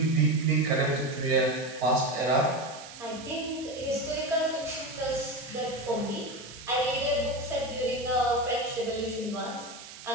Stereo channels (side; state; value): right; noise; hiss, 15 dB below the sound